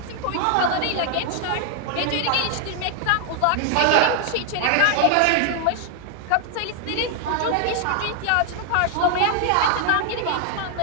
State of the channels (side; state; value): both; different; correlation 0.00